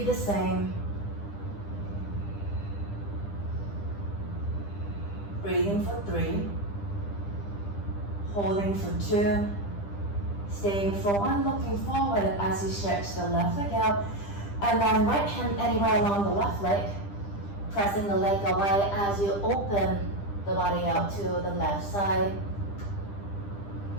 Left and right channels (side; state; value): right; late; 10 ms